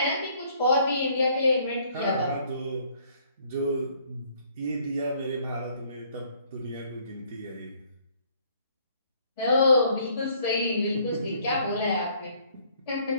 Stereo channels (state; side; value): inverted; both; correlation -0.62